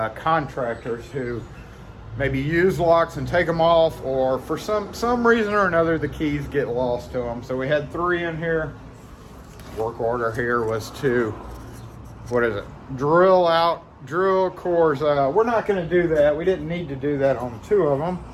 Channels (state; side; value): identical; both; correlation 1.00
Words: contractors who maybe use locks and take them off, or for some reason or another the keys get lost to them. So we had 3 in here. Work order here was to, drill cores. We're not going to do that. We didn't need to do that on 2 of them.